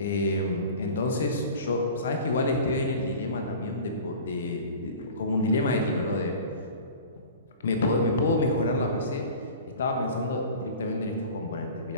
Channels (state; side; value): inverted; both; correlation -0.40